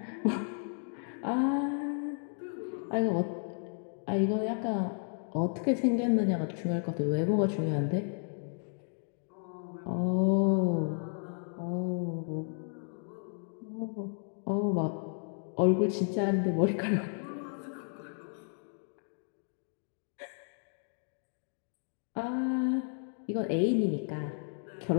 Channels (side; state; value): right; silent; 56 dB below the other